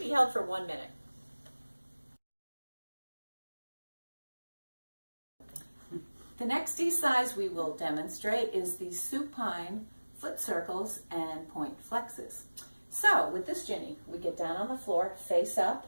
be held for 1 minute. The next E-size we will demonstrate is the supine foot circles and point flexes. So with this, Ginny, we get down on the floor, face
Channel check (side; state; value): both; inverted; correlation -1.00